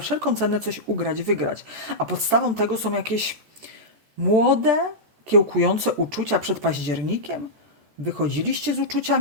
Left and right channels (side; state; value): left; late; 14 ms